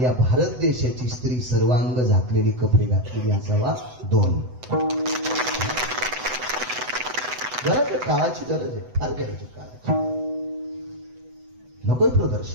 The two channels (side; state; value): left; late; 8.0 ms